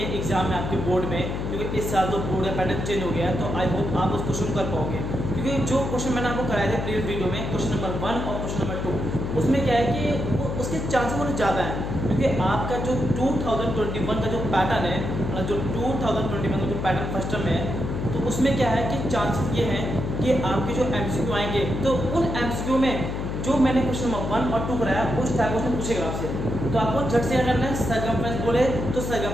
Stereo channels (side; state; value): left; noise; hum, 3 dB below the sound